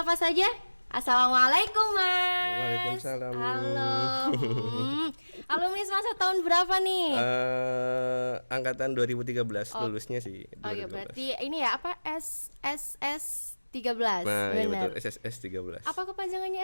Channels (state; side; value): inverted; both; correlation -1.00